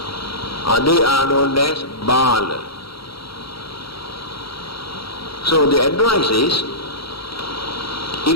They are known as Bala. So the advice is,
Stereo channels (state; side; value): late; right; 0.75 ms